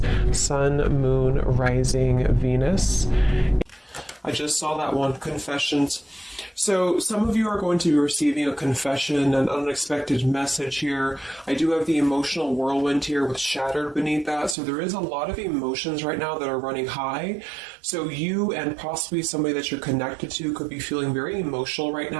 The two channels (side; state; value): left; drops out; at 14.6 s